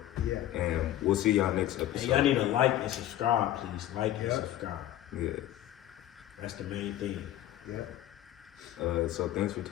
Yeah. And we'll see y'all next And episode. y'all need to like and subscribe, please. Like and subscribe. Yeah. That's the main thing. Yep. So thanks for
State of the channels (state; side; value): quieter; right; 13.1 dB